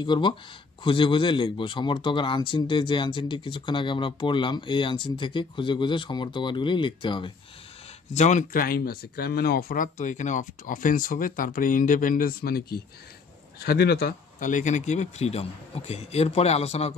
করব, খুঁজে খুঁজে লিখবো। সমর্থক আর আনসিনটে যে আনসিনটি কিছুক্ষণ আগে আমরা পড়লাম, এই আনসিন থেকে খুঁজে খুঁজে সমর্থ ওয়ার্ডগুলি লিখতে হবে। যেমন ক্রাইম আছে, ক্রাইম মানে অপরাধ, তো এখানে অফেন্স হবে। তারপরে ইন্ডিপেন্ডেন্স মানে কি, স্বাধীনতা, তাহলে এখানে কী হবে, ফ্রিডম। ওকে, এরপরে আলোচনা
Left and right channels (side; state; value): right; quieter; 4.7 dB